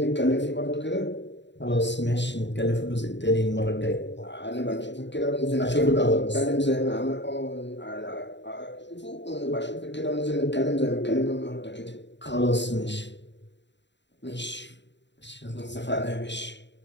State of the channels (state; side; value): late; right; 0.52 ms